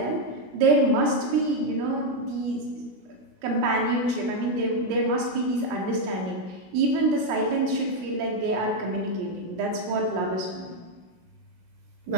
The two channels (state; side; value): late; left; 16 ms